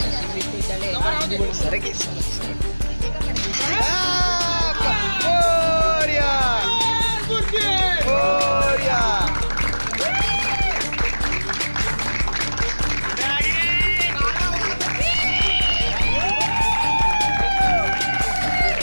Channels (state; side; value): inverted; both; correlation -1.00